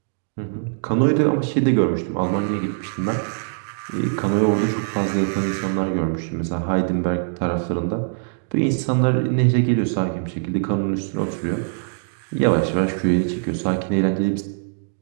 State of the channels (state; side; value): silent; left; digital silence